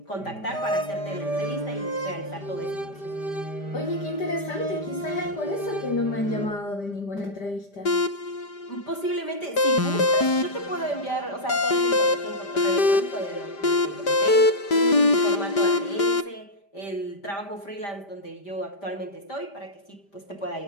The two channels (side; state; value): right; late; 5.0 ms